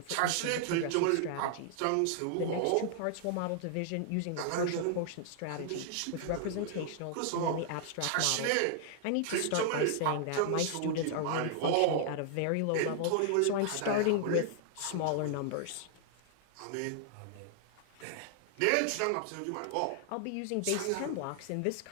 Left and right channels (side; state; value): both; different; correlation -0.01